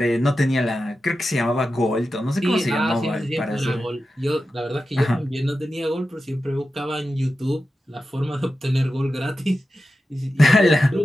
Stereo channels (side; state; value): both; normal; correlation 0.92